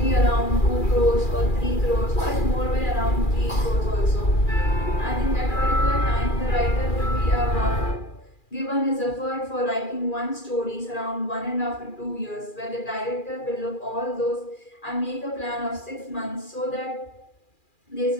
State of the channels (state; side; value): late; right; 2.4 ms